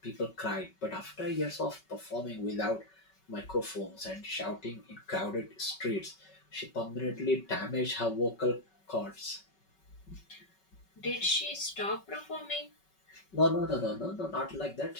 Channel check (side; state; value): right; late; 5.3 ms